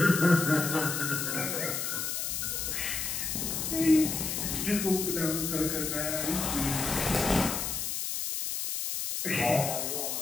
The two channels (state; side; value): noise; left; hiss, 2 dB below the sound